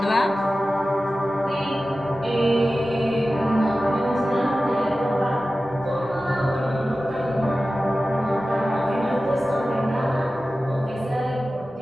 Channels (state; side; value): normal; both; correlation 0.95